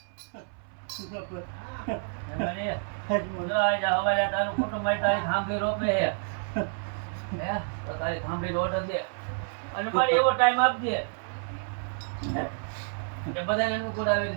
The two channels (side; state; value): left; silent; 59 dB below the other